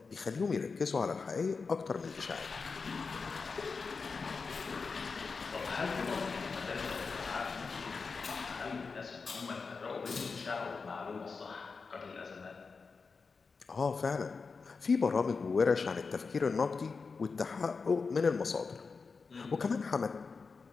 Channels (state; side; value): quieter; right; 4.7 dB